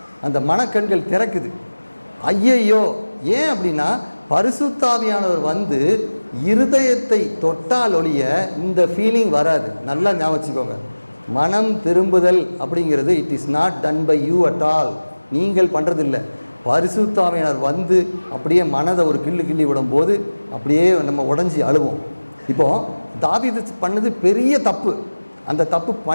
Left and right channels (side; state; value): both; inverted; correlation -1.00